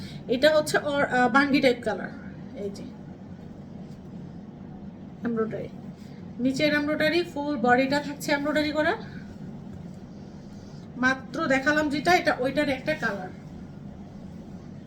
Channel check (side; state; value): both; identical; correlation 1.00